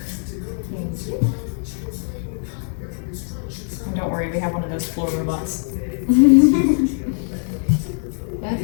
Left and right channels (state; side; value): silent; right; digital silence